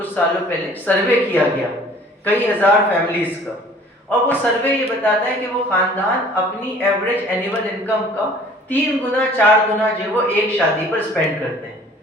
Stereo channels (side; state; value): both; normal; correlation 0.51